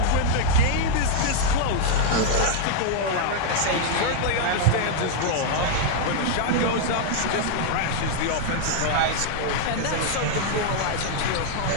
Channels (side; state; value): both; different; correlation -0.01